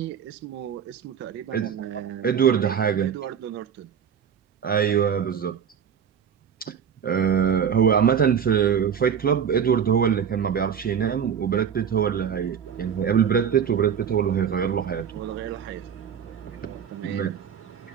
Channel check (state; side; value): quieter; left; 7.9 dB